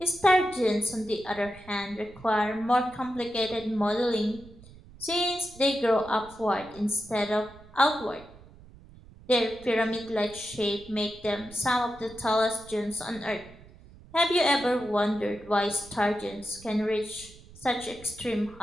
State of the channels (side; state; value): right; noise; rumble, 21 dB below the sound